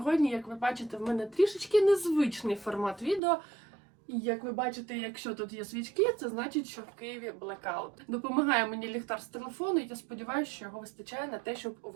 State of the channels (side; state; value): left; drops out; at 3.2 s